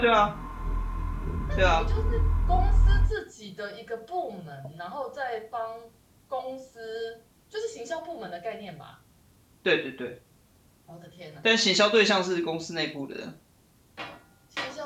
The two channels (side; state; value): both; identical; correlation 1.00